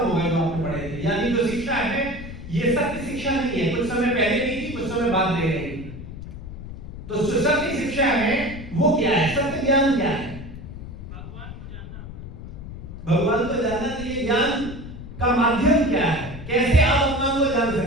गए जो आपने पढ़े थे। यानी जो शिक्षा है ये सत्य शिक्षा नहीं है, कुछ समय पहले नहीं थी, कुछ समय बाद दे रही। तो जो सत्य शिक्षा है वो क्या है? सत्य ज्ञान क्या है? भगवान को जानना चाहिए। ज्ञान का माध्यम क्या है? कैसे आप भगवान को जान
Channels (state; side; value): noise; left; rumble, 11 dB below the sound